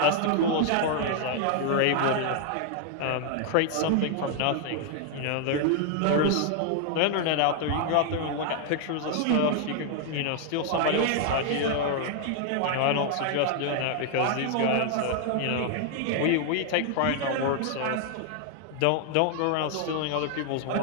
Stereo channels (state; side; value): different; both; correlation 0.00